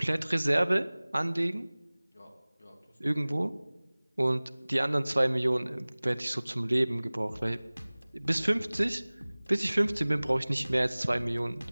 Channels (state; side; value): inverted; both; correlation -1.00